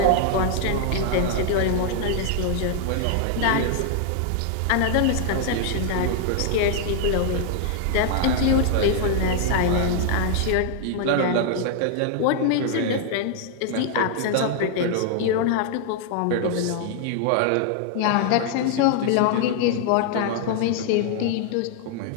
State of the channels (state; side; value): different; both; correlation 0.00